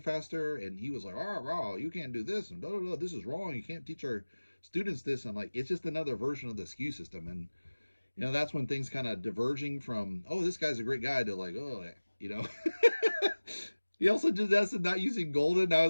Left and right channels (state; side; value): inverted; both; correlation -1.00